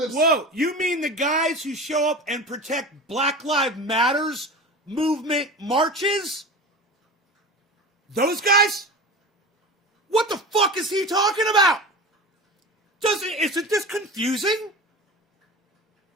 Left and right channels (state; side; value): normal; both; correlation 0.32